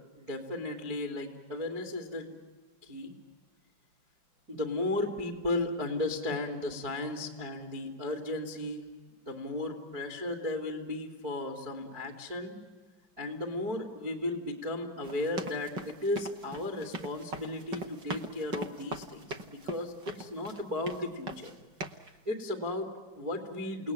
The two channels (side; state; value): left; late; 5.4 ms